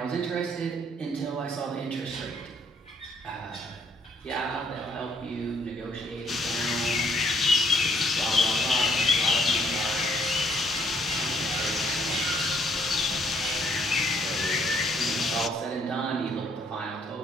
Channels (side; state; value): both; normal; correlation 0.66